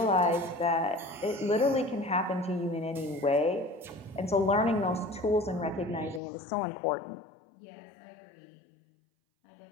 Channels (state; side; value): drops out; right; at 6.2 s